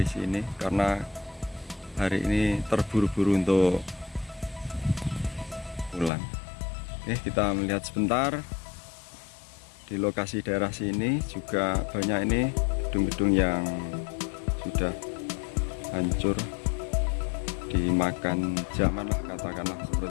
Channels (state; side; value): drops out; right; at 6.1 s